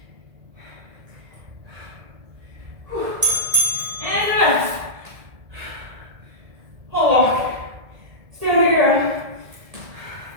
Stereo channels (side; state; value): left; late; 1.9 ms